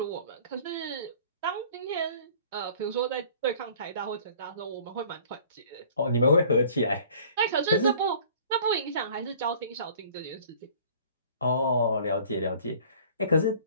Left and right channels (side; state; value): both; inverted; correlation -0.50